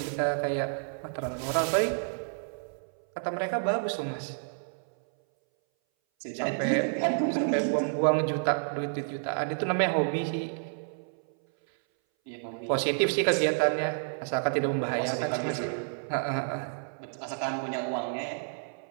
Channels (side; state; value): left; silent; 58 dB below the other